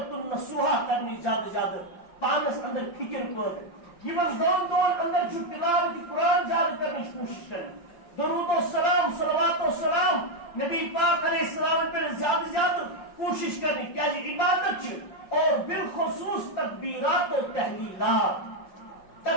النصوحہ کرنی زیادہ پانس اندر فکر پٲدٕ یمن دہن دہن اندر چھ تلاوت قرآن زیادہ کرنے کوشش کریں درود و سلام صلوات و سلام نبی پاک علیہ السلام پر زیادہ کوشش کرنی کیا جی عبادت چھ اور بالخصوص تکبیرات و تحلیلات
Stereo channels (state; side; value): late; right; 5.8 ms